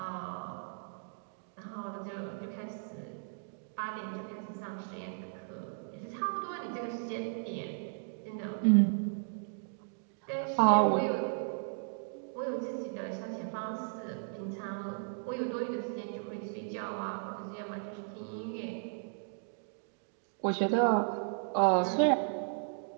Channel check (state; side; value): silent; left; digital silence